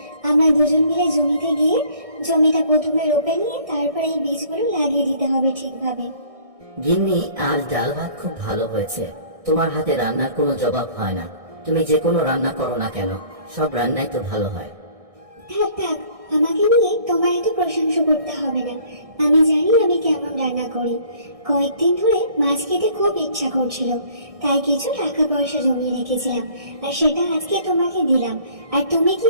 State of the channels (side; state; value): left; late; 1.6 ms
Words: আমরা দুজন মিলে জমিতে গিয়ে জমিটা প্রথমে রোপে নিয়ে তারপর এই বীজগুলো লাগিয়ে দিতে হবে ঠিকভাবে। গিন্নি, আজ ডাল ভাত খুব ভালো হয়েছে। তোমার হাতে রান্নার কোনো জবাব হয় না। তুমি যে কোনো রান্না করো না কেন, সব রান্নাই তো ভালো হয়। থাক থাক, আমাকে নিয়ে তোমার এত প্রশংসা করতে হবে না। আমি জানি আমি কেমন রান্না করি। কয়েকদিন ধরে মাছ খেতে খুব ইচ্ছা করছিল, তাই কিছু টাকা পয়সা জমিয়ে রেখেছিলাম, আর সেটা আজকে তোমাকে দিলাম। আর তুমি কি